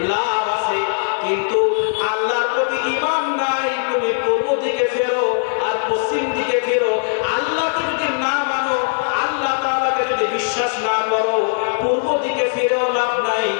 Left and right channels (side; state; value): right; silent; 56 dB below the other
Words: লাভ আছে কিন্তু আল্লাহর প্রতি ঈমান নাই তুমি পূর্ব দিকে ফেরো আর পশ্চিম দিকে ফেরো আল্লাহকে যদি না মানো আল্লাহ তাআলাকে যদি বিশ্বাস না করো পূর্ব দিকে ফিরেও লাভ নাই